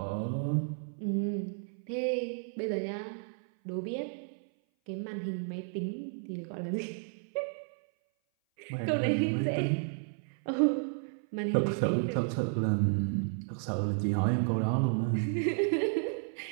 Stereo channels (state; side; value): silent; left; 56 dB below the other